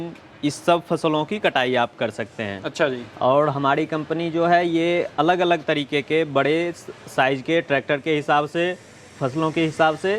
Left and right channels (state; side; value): identical; both; correlation 1.00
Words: इस सब फसलों की कटाई आप कर सकते हैं। अच्छा जी। और हमारी कंपनी जो है ये अलग अलग तरीके के बड़े साइज के ट्रैक्टर के हिसाब से, फसलों के हिसाब से